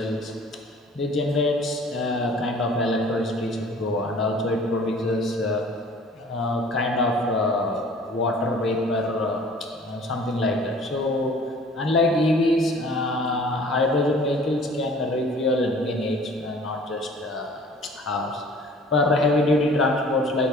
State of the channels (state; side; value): normal; both; correlation 0.50